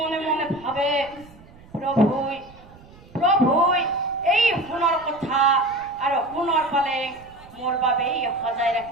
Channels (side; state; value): right; noise; rumble, 23 dB below the sound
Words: মনে ভাবে, প্ৰভুই প্ৰভুই এই সোণৰ কথা আৰু সোণৰ পালে মোৰ বাবেই সজাই